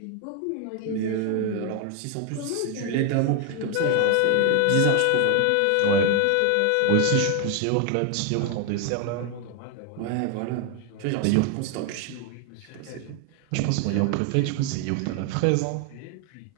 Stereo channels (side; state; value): both; different; correlation 0.01